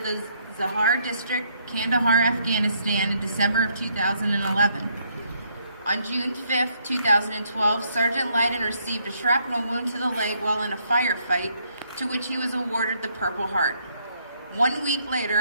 the Zahar District, Kandahar, Afghanistan in December of 2011. On June 5, 2012, Sergeant Lyden received a shrapnel wound to the leg while in a firefight, to which he was awarded the Purple Heart. 1 week later,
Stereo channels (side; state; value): both; inverted; correlation -0.71